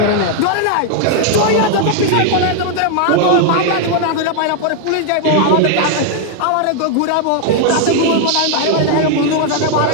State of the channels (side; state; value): both; different; correlation 0.00